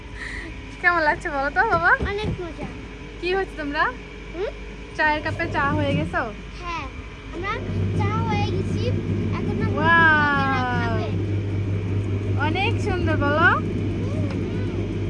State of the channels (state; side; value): identical; both; correlation 1.00